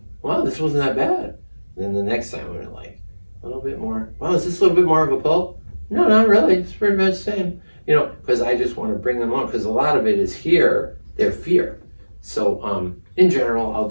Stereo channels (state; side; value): inverted; both; correlation -1.00